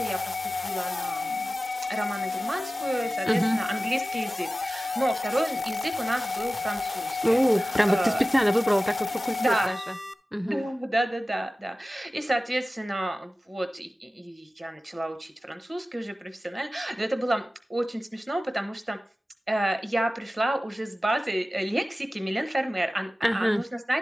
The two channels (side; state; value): both; normal; correlation 0.96